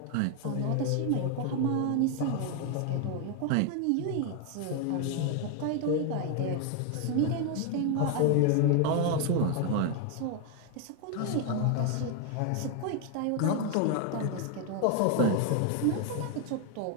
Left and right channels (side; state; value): both; different; correlation 0.01